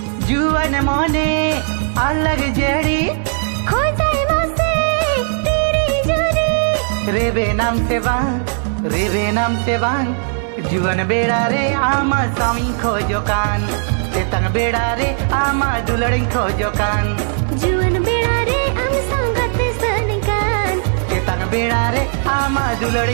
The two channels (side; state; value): left; silent; 63 dB below the other